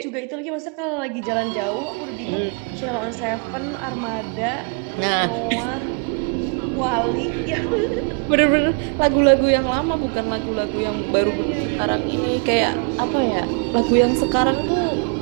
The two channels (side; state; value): left; quieter; 38.5 dB